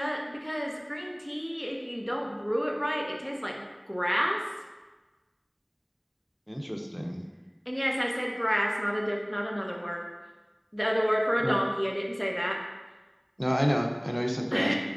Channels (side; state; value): both; identical; correlation 1.00